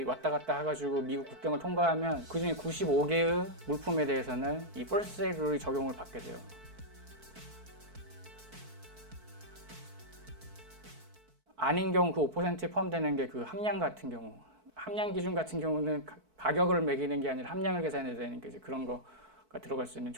왔다 갔다 해가지고 미국 국경을 통과하면 그중에 95개의 물품에 대해서는 이 first sale 룰이 적용을 받게 돼요. 아닌 경우 그 5%에 포함되는 게 그 함량 같은 경우, 함량 기준 같은 경우는 가격을 매기는 게 아니라 함량을 계산해야 되는 게 이제 그런 거가 들어갈 수 있는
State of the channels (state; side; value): late; left; 4.6 ms